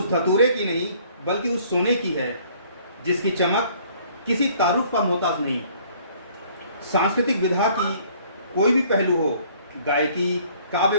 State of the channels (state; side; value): inverted; both; correlation -0.58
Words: धतूरे की नहीं बल्कि उस सोने की है जिसकी चमक किसी तारुफ का मोहताज नहीं। सांस्कृतिक विधा की कोई भी पहलू हो, गायकी, काव्य